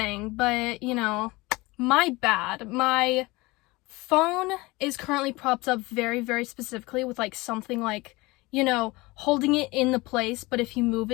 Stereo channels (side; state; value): right; quieter; 22.5 dB